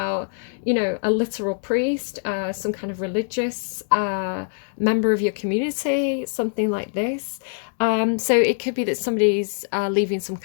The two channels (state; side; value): silent; right; digital silence